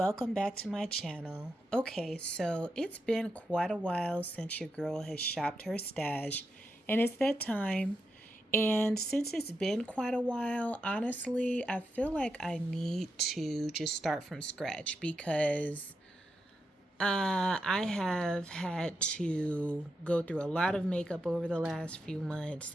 back to my channel. Okay, so it's been quite a while since your girl has shopped her stash, and it's that time. And since it's been quite a while, honestly, I feel like I need to just start from scratch because I have had to go through a lot of makeup over the last few months,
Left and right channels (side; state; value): both; normal; correlation 0.86